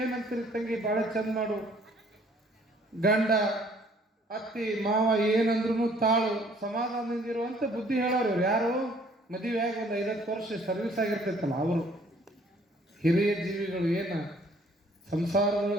ತಂಗಿ ಬಾಳೆ ಚಂದ ಮಾಡು, ಗಂಡ ಅತ್ತಿ ಮಾವ ಏನಂದ್ರು ತಾಳು, ಸಮಾಧಾನದಿಂದಿರುವಂತ ಬುದ್ಧಿ ಹೇಳೋರು. ಇವ್ರು ಯಾರು? ಮದುವೆಯಾಗಿ 1 5 ವರ್ಷ ಸರ್ವಿಸ್ ಆಗಿರ್ತೈತಲ್ಲ ಅವರು, ಹಿರಿಯ ಜೀವಿಗಳು, ಏನು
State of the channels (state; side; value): normal; both; correlation 0.59